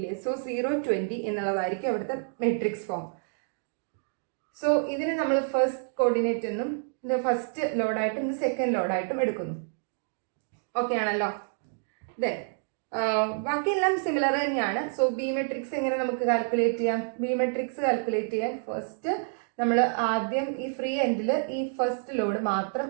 സോ 0, 20 എന്നുള്ളതായിരിക്കും അവിടുത്തെ മെട്രിക്സ് ഫോം. സോ ഇതിന് നമ്മൾ ഫസ്റ്റ് കോർഡിനേറ്റ് എന്നും ഇത് ഫസ്റ്റ് ലോഡായിട്ടും ഇത് സെക്കൻഡ് ലോഡായിട്ടും എടുക്കുന്നു. ഓക്കെ ആണല്ലോ. ദെൻ ബാക്കിയെല്ലാം സിമിലർ തന്നെയാണ്. സോ ബി മെട്രിക്സ് എങ്ങനെ നമുക്ക് കാൽക്കുലേറ്റ് ചെയ്യാം? ബി മെട്രിക്സ് കാൽക്കുലേറ്റ് ചെയ്യാൻ ഫസ്റ്റ് നമ്മൾ ആദ്യം ഈ ഫ്രീ എൻഡിൽ ഈ ഫസ്റ്റ് ലോഡ് മാത്രം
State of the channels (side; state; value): left; silent; digital silence